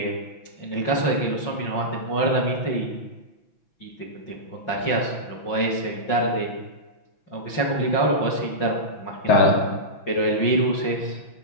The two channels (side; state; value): right; late; 5.5 ms